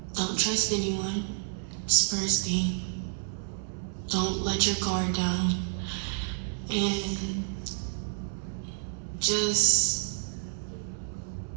Don't trust anyone. It's first thing. Don't let your guard down. And just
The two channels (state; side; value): silent; left; 58 dB below the other